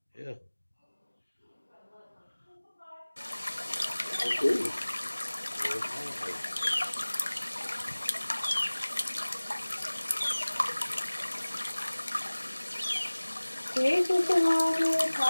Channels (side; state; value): both; inverted; correlation -1.00